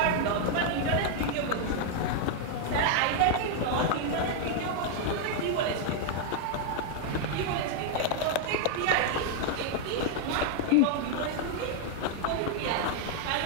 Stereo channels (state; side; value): different; both; correlation 0.00